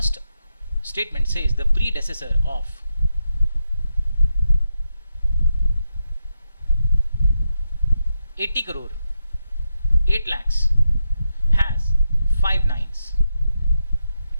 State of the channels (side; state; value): both; inverted; correlation -0.85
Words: statement says the predecessor of $80 crore, 8 lakhs has 5 nines.